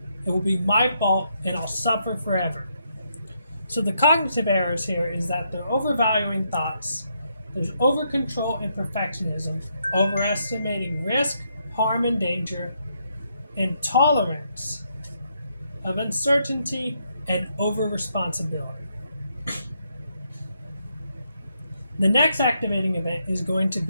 it will be my fault and I'll suffer forever. So the cognitive errors here is that they're overvaluing thoughts, there's over-control and perfectionism, overestimating risk, harm, and danger, intolerance of uncertainty, and over-responsibility. The next activating event is going to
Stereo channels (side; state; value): both; inverted; correlation -0.77